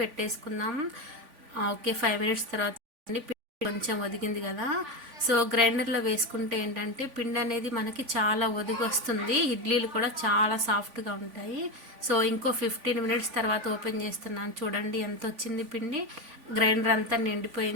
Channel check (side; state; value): left; late; 3.5 ms